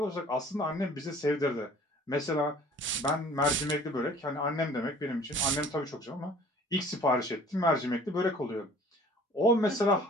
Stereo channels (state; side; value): normal; both; correlation 0.50